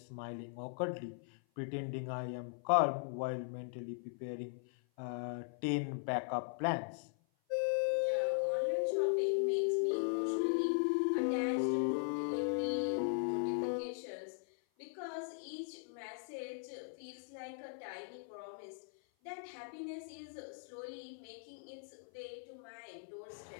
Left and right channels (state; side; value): silent; right; 52 dB below the other